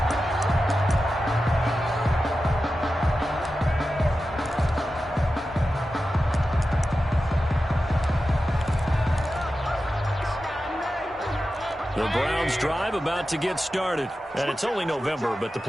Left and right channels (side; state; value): both; normal; correlation 0.92